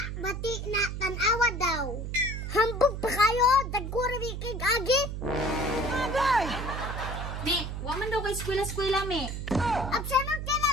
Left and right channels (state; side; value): noise; right; hum, 5 dB below the sound